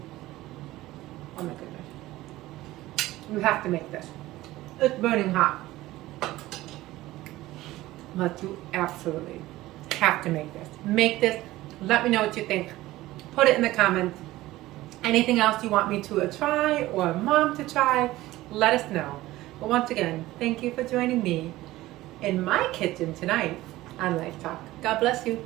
Oh my goodness. You have to make this. It's burning hot. But you absolutely have to make this. Make this. Let me know what you think. Put it in the comments. Anything else you want me to try or mom to try, let us know. But once again, thank you for joining me in my kitchen tonight on Life Talk. God bless you.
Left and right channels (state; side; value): quieter; left; 17.1 dB